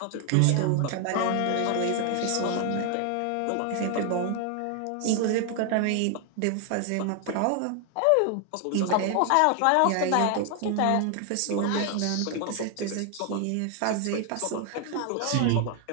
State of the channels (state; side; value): different; both; correlation 0.00